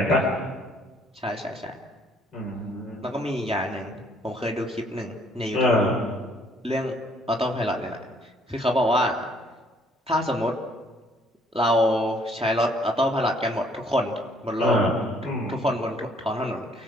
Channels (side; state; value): both; normal; correlation 0.63